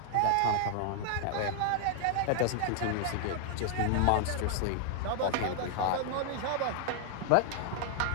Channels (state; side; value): different; both; correlation 0.00